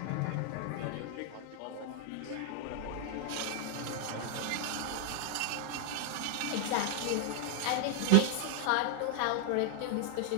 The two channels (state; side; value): different; both; correlation 0.00